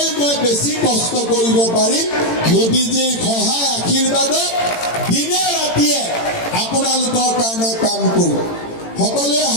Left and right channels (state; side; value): late; right; 18 ms